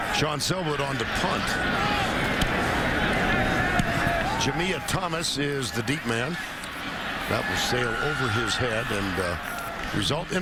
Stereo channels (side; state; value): both; identical; correlation 1.00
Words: Sean Selwood on to punt. Jamia Thomas is the deep man. That will sail over his head and result in